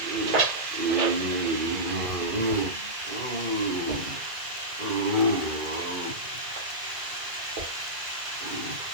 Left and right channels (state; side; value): late; left; 2.0 ms